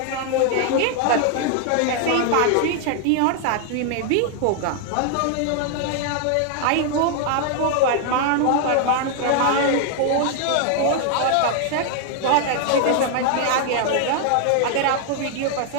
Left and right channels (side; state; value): both; different; correlation 0.00